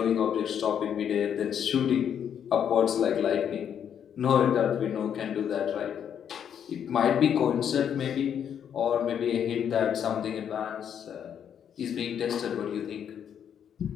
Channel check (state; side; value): quieter; right; 8.7 dB